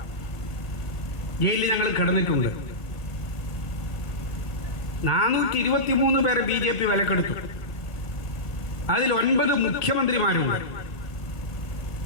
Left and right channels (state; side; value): late; right; 1.6 ms